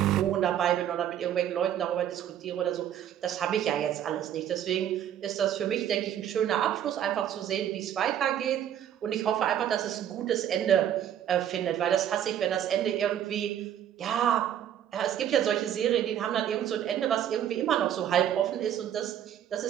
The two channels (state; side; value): quieter; left; 10.3 dB